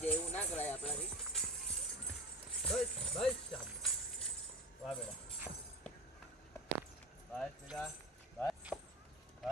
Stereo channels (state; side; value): normal; both; correlation 0.29